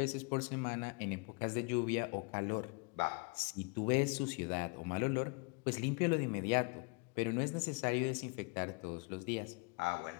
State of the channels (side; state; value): right; quieter; 32.9 dB